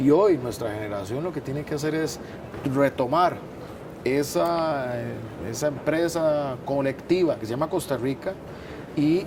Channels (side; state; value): both; identical; correlation 1.00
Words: hoy nuestra generación lo que tiene que hacer es retomar esa empresa colectiva que se llama Costa Rica y